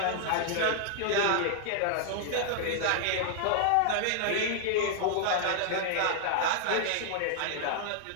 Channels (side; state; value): both; different; correlation -0.01